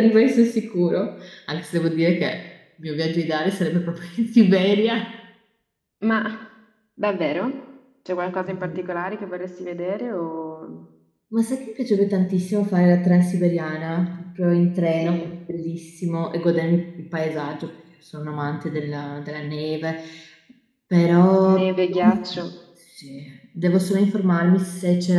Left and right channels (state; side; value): identical; both; correlation 1.00